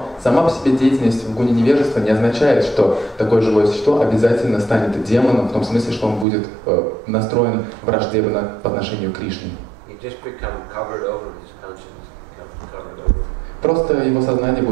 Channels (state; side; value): drops out; left; at 6.2 s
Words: сама по себе деятельность в гуне невежества не означает, что такое живое существо обязательно станет демоном, в том смысле, что он будет настроен враждебно по отношению к Кришне. Просто его сознание